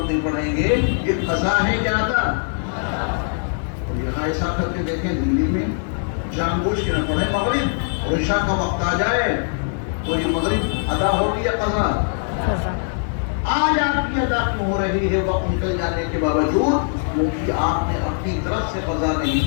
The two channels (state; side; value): silent; right; 65 dB below the other